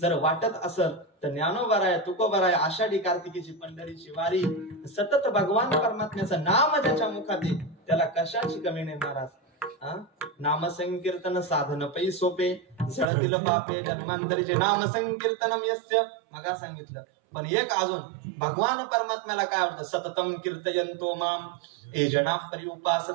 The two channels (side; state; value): left; drops out; at 13.1 s